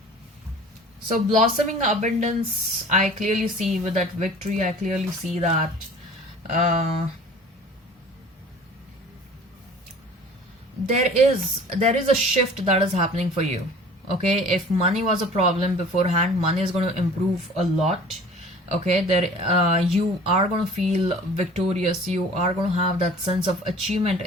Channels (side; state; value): both; normal; correlation 0.46